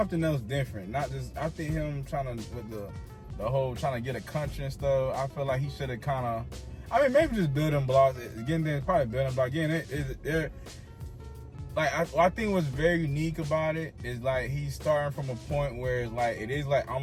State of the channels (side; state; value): both; identical; correlation 1.00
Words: else different? Not just, I think him trying to, with the whole trying to get a country and stuff, I feel like he should have kind of, maybe just building blocks. Again, there's probably building blocks. Again, I think what's very unique about it is like he's starting from a point where it's like it is like